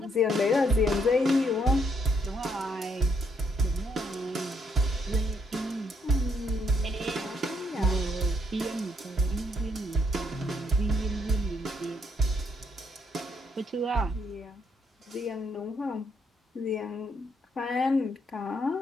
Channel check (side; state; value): both; normal; correlation 0.72